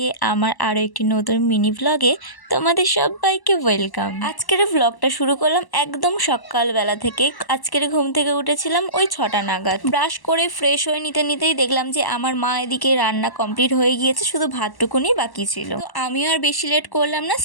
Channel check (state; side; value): late; right; 1.1 ms